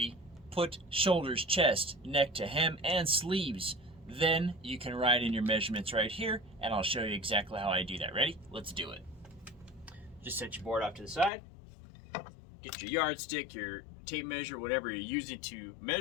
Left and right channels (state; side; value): drops out; right; at 11.3 s